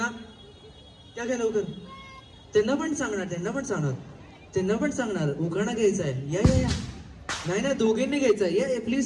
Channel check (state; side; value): identical; both; correlation 1.00